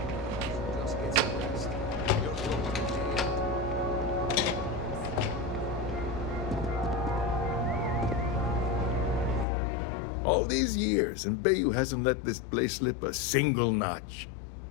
All these years, and Bayou hasn't let this place slip a single notch.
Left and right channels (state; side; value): drops out; right; at 9.5 s